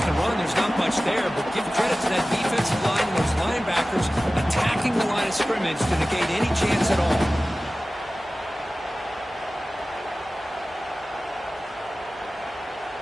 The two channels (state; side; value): normal; both; correlation 0.96